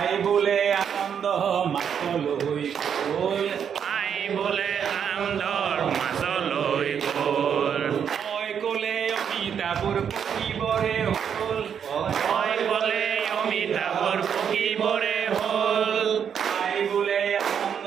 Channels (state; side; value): quieter; left; 7.9 dB